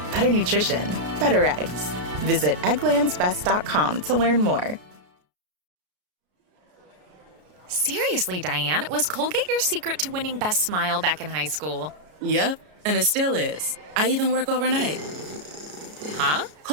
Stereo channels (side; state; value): left; late; 33 ms